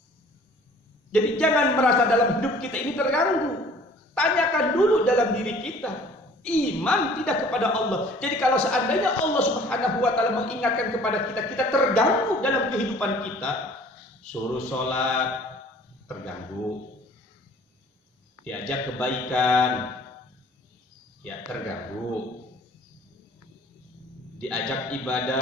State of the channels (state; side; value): normal; both; correlation 0.52